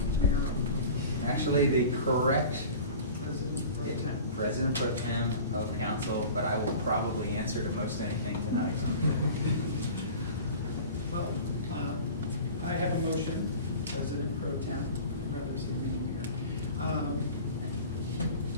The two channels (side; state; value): both; inverted; correlation -0.39